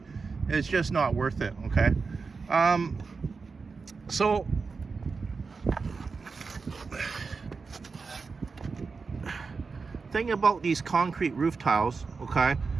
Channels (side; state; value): left; quieter; 4.7 dB